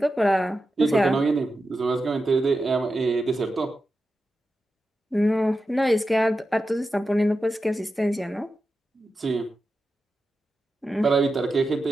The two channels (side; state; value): both; normal; correlation 0.91